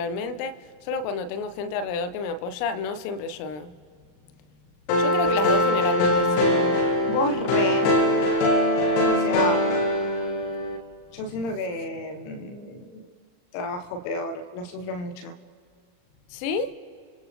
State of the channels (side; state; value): right; late; 39 ms